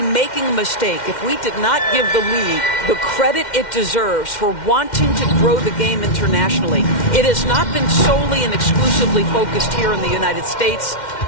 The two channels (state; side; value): late; right; 2.1 ms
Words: making a mistake if we did not give the league the credit it deserves for wanting to grow the game internationally. It has not been solely and exclusively focused here in the United States.